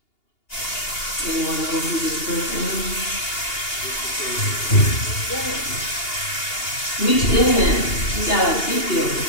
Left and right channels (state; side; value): late; right; 2.8 ms